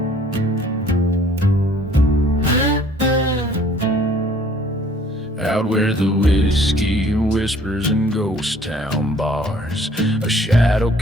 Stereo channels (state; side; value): normal; both; correlation 0.56